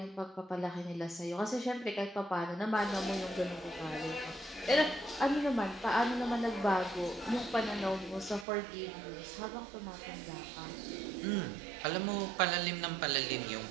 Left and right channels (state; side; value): drops out; left; at 8.5 s